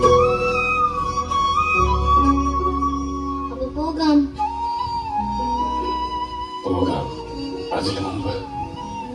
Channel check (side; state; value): both; identical; correlation 1.00